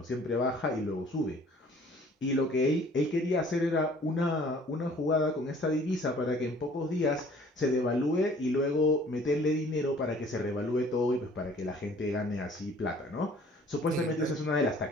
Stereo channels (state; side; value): normal; both; correlation 0.54